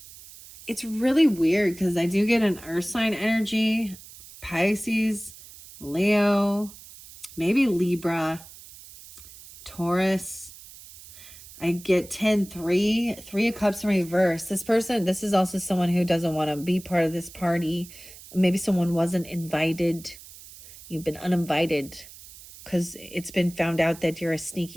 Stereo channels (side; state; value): right; noise; hiss, 18 dB below the sound